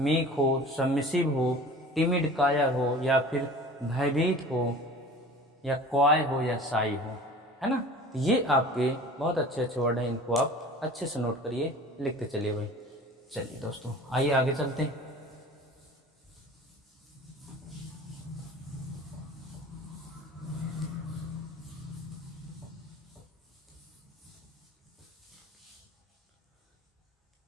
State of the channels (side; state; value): both; normal; correlation 0.42